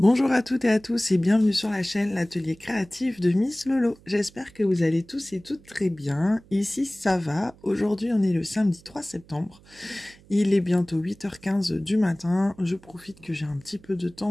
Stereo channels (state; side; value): noise; right; hum, 26 dB below the sound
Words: Bonjour à toutes et à tous et bienvenue sur la chaîne L'Atelier Créatif de Miss Lolo. J'espère que vous allez tous et toutes très bien. Ici ça va. Aujourd'hui on est le samedi 3 septembre. Il est bientôt 8h15 du matin. Je profite que j'ai un petit peu de